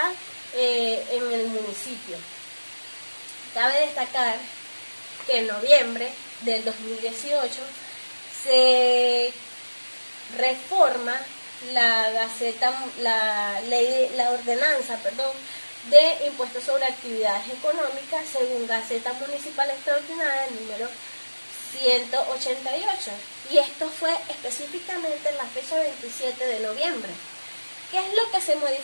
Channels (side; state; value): both; inverted; correlation -1.00